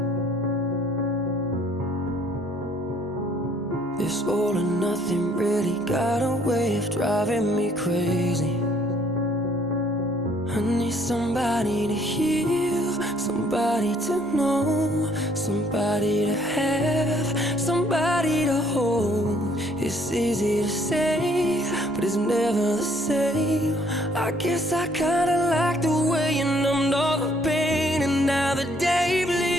This all or nothing really got a way of driving me crazy. I need somebody to heal, somebody to know, somebody to have, somebody to hold. It's easy to say, but it's never the same. I guess I kinda like the way you numbed all the pain, and now the day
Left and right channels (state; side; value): noise; right; hum, 25 dB below the sound